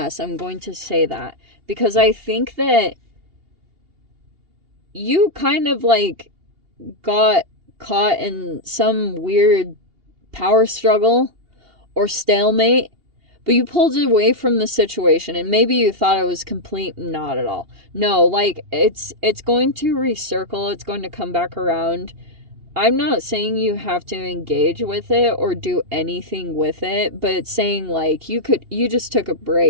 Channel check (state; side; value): late; left; 2.8 ms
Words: I'm going to say that because I think that you kind of like got caught in some weird power struggle or stalemate, but you pulled away from the situation, and maybe you thought it was complete, not at all. No, like, it's going to recircle, it's going to come back around. I'm not saying you have to engage with it or do anything with it, but it's saying, like, you just took a